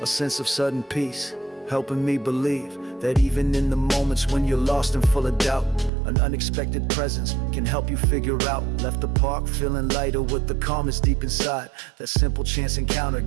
A sense of sudden peace, helping me believe that even in the moments when you're lost and full of doubt, an unexpected presence can help you figure out. Left the park feeling lighter with the calmness deep inside. That simple chance encounter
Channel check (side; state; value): left; drops out; at 5.9 s